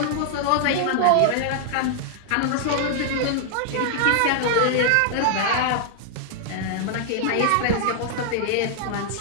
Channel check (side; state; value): both; different; correlation -0.01